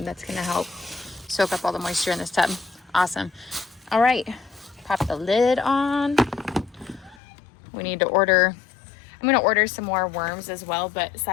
That's going to help soak up all the moisture in this tub. Awesome. All right. Pop the lid on. We need to order. I'm gonna order some more worms as well, but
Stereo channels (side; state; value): right; drops out; at 7.2 s